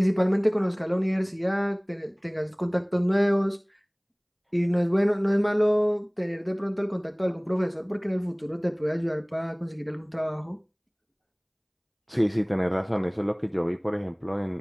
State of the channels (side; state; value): both; identical; correlation 1.00